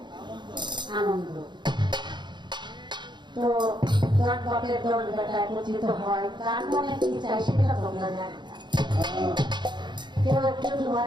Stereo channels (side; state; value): left; late; 0.22 ms